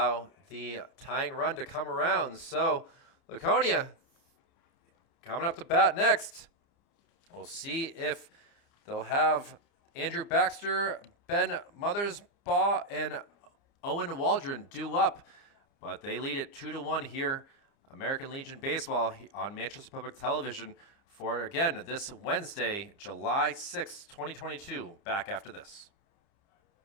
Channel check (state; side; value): late; right; 30 ms